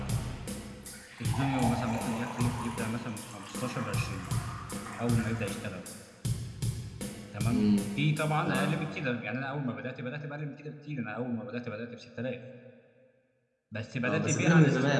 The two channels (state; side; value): identical; both; correlation 1.00